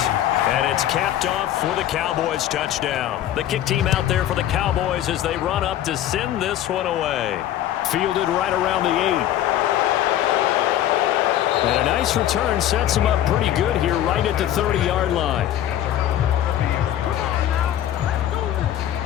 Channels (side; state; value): right; quieter; 11.9 dB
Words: And it's capped off for the Cowboys touchdown. The kick team out there for the Cowboys as they run up to send this one away. Fielded right around the 8. And a nice return sets him up pretty good here right at the 30-yard line.